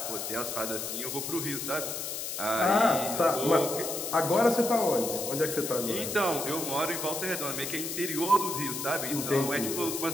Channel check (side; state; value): left; noise; hiss, 5 dB below the sound